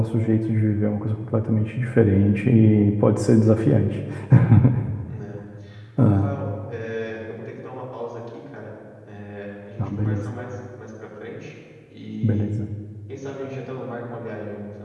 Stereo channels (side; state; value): both; identical; correlation 1.00